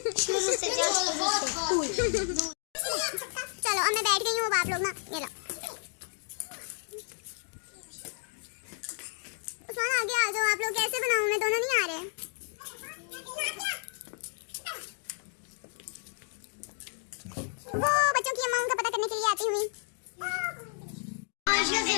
चलो अब मैं बैठ गई हूँ, अब आप लोग ना ये लो। कैसे बनाऊं मैं, दोनों नहीं आ रहे। वो बच्चों की अम्मा उनका पता करने के लिए आती हुई। आयशा से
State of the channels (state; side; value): silent; right; 57 dB below the other